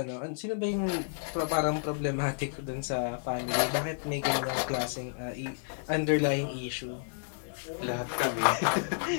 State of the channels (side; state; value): right; silent; digital silence